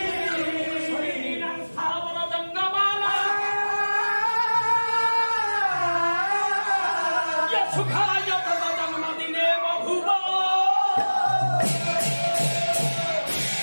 ସ୍ଥାବର ଜଙ୍ଗମାଲା ସୁଖାୟ ତଦ ଜନ୍ମଦିନେ ବହୁବ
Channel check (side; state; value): both; inverted; correlation -1.00